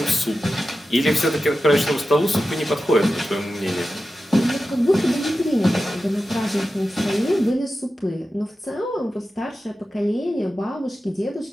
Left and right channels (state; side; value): normal; both; correlation 0.92